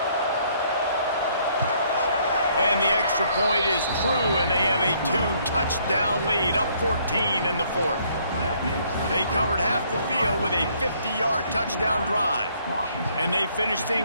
And the extra point is true, and they have a 2-touchdown lead, up 14 in the fourth. They covered half the field with a 50-yard touchdown drive. And they finished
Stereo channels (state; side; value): inverted; both; correlation -0.65